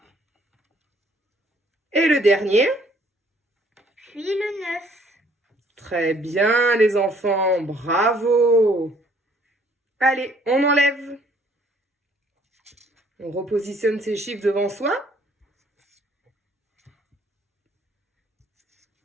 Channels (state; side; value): normal; both; correlation 0.60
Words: Et le dernier? Puis le 9. Très bien, les enfants, bravo! Allez, on enlève. On repositionne ces chiffres devant soi.